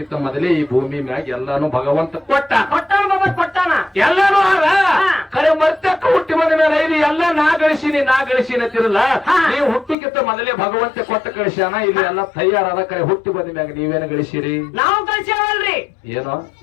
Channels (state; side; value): drops out; right; at 10.0 s